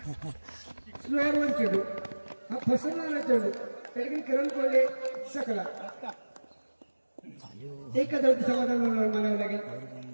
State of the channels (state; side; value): inverted; both; correlation -1.00